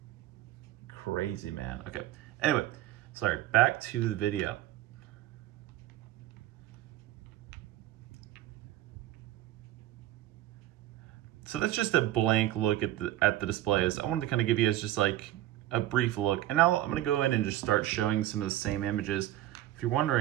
crazy, man. Okay, anyway, sorry, back to the video. So that's just a blank look at the displays. I wanted to kind of give you guys just like a brief look. And now I'm gonna go in and just start showing some of the same images. If you're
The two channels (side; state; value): left; quieter; 14.3 dB